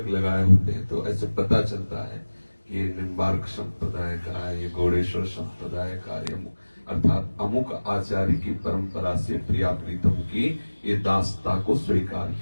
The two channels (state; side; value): inverted; both; correlation -1.00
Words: लगाए होते हैं तो ऐसे पता चलता है कि ये निम्बार्क संप्रदाय का है, ये गौड़ेश्वर संप्रदाय का, ये अर्थात अमुक आचार्य की परंपरा से प्रिया प्रीतम की ये दासता को स्वीकार